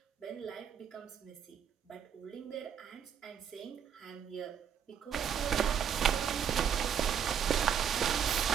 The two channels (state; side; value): quieter; left; 8.1 dB